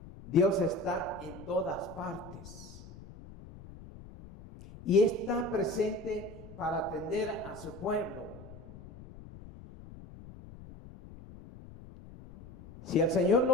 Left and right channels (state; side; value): noise; left; rumble, 17 dB below the sound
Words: Dios está en todas partes y está presente para atender a su pueblo. Si el Señor